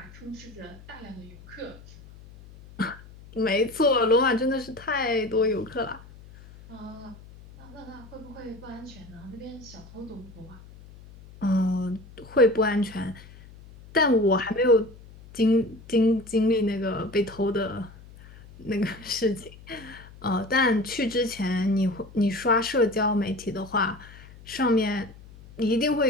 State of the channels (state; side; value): noise; left; hum, 20 dB below the sound